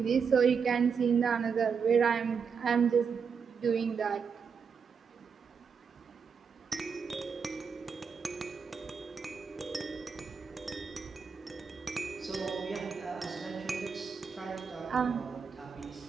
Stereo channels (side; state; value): left; quieter; 6.0 dB